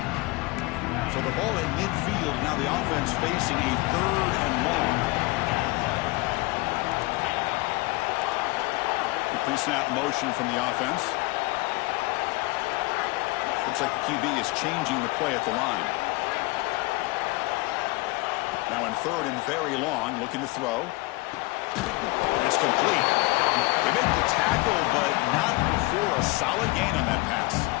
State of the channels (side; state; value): right; quieter; 23.2 dB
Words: So the ball in midfield. Now the offense facing a 3rd and long. Pre-snap motion from the offense. Looks like the QB is changing the play at the line. Now in 3rd and very long, looking to throw. It's complete. They make the tackle, but not before a solid gain on that pass.